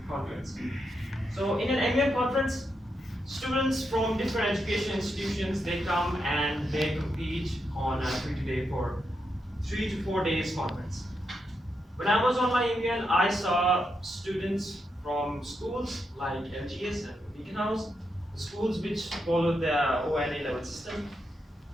conference. So in an MUN conference, students from different education institutions, they come and they compete on a free-to-day for 3 to 4 days conference. When I was on my MUN, I saw students from schools like LGS and Beacon House, schools which followed the ONA level system.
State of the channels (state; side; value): normal; both; correlation 0.83